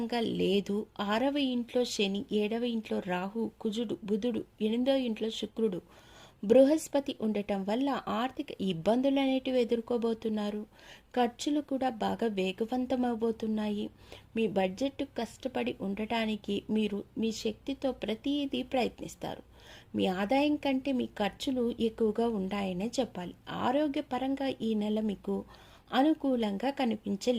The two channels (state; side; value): identical; both; correlation 1.00